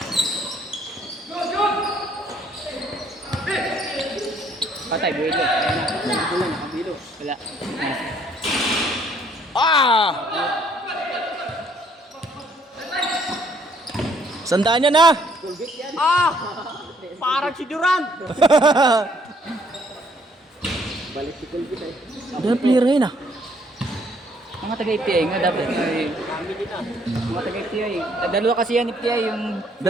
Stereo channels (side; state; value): both; normal; correlation 0.65